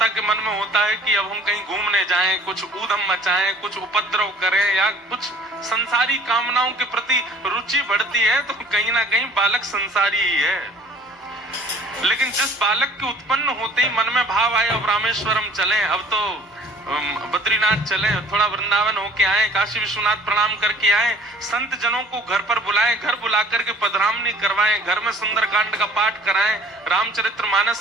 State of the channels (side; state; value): both; normal; correlation 0.52